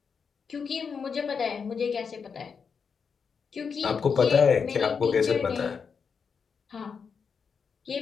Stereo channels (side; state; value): right; quieter; 6.0 dB